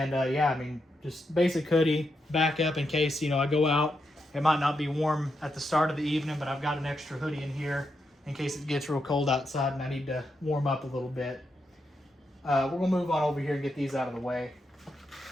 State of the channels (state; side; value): normal; both; correlation 0.83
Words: yeah, I mean, just basic hoodie, back up in case, I go out. It might not be warm at the start of the evening, but I've got an extra hoodie in here in case it gets real cold outside and I need to warm up a little bit. We're going to move on over here and get these out of the way.